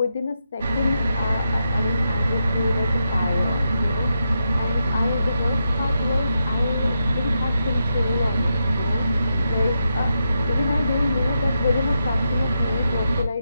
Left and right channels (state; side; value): inverted; both; correlation -0.85